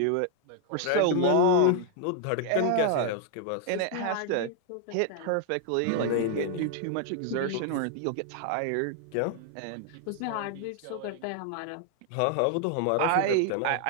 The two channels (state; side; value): different; both; correlation 0.00